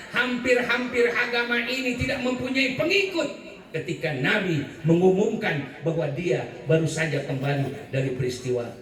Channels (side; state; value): both; identical; correlation 1.00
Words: Hampir-hampir agama ini tidak mempunyai pengikut ketika Nabi mengumumkan bahwa dia baru saja kembali dari peristiwa